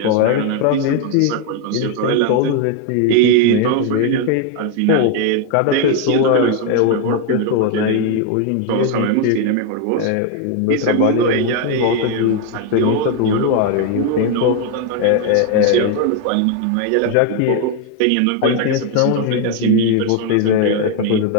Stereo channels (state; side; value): different; both; correlation 0.01